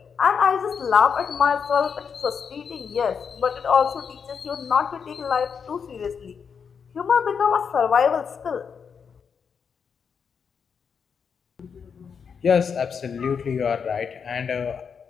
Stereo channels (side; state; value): right; quieter; 6.4 dB